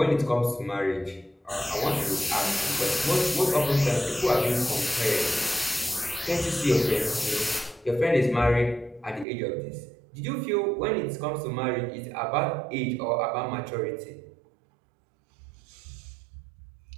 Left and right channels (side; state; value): left; drops out; at 9.2 s